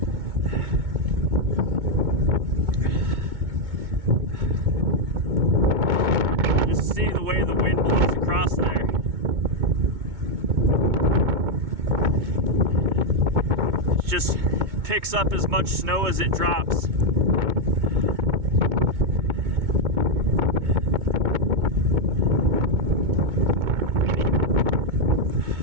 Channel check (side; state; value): left; late; 2.2 ms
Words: See the way the wind blows across there. It just picks up as much snow as it drops.